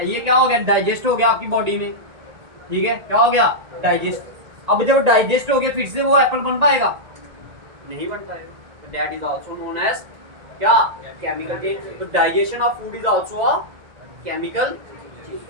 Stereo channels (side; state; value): left; late; 1.8 ms